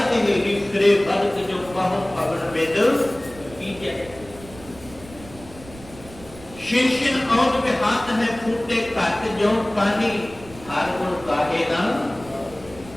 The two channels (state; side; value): noise; right; rumble, 19 dB below the sound